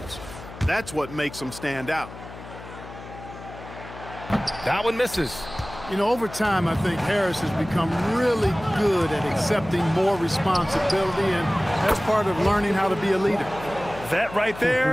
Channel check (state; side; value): noise; left; hum, 14 dB below the sound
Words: That's what makes them stand out. That one misses. You know, over time, I think Harris has become really good at accepting more responsibility, and that's part of learning how to be a leader. That right